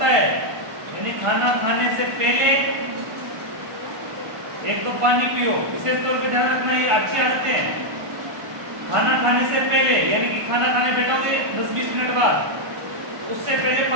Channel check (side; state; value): left; late; 1.5 ms